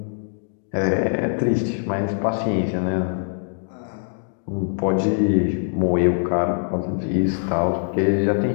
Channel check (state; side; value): silent; right; digital silence